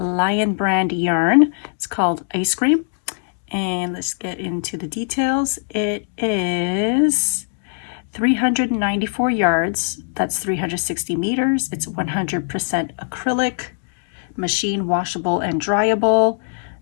Lion brand yarn. It's called Ice Cream, and let's get into the details. It is 394 yards. That's 360 meters. It's 100% acrylic, machine washable and dryable,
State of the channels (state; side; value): silent; right; digital silence